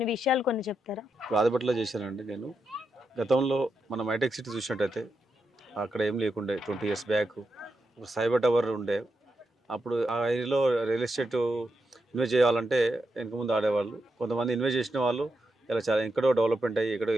విషయాలు కొన్ని చెప్తారా? ఆదిబట్లలో చేశానండి నేను. గతంలో మనం హైటెక్ సిటీ చూసినట్టయితే అక్కడ ఏం లేకుండే 20 years బ్యాక్ ఒక సైబర్ టవర్ ఉండే. అప్పుడు ఆ ఏరియాలో రియల్ ఎస్టేట్ ఇన్వెస్ట్ చేయాలంటే వెనక ముందు ఆడేవాళ్ళు. కొంతమంది ఇన్వెస్ట్ చేసిన వాళ్ళు ఇలా చాలా ఎక్కడో డెవలప్మెంట్ అయ్యి ఎక్కడో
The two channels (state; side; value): normal; both; correlation 0.85